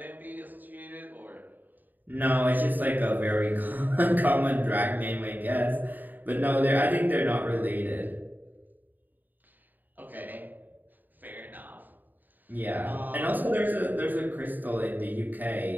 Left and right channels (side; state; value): left; late; 0.087 ms